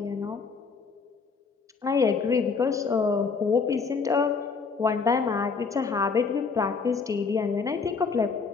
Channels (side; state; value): right; quieter; 5.0 dB